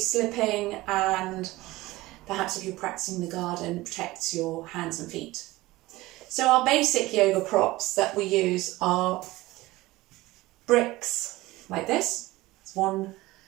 and perhaps if you're practicing the garden, protects your hands and feet. So our basic yoga props that we use are bricks like this. It's one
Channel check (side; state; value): left; quieter; 19.0 dB